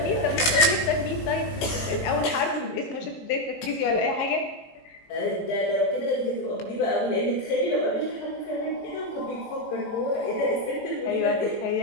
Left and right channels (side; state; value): right; late; 18 ms